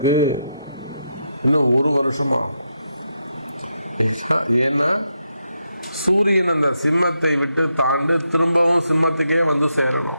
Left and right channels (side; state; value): both; inverted; correlation -0.82